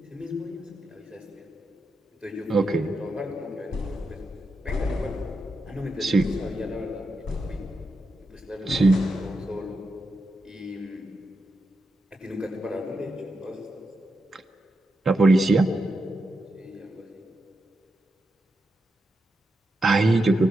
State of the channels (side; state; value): both; normal; correlation 0.86